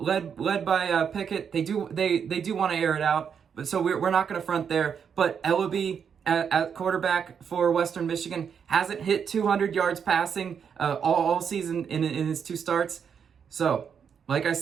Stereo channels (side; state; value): left; quieter; 7.2 dB